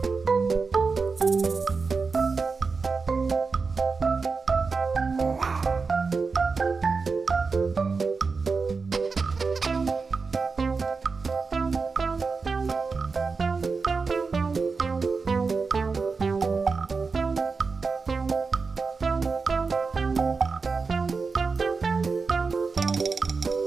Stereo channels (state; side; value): quieter; left; 4.7 dB